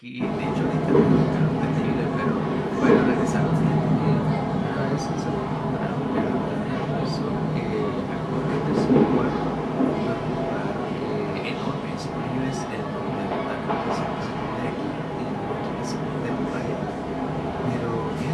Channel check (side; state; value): both; identical; correlation 1.00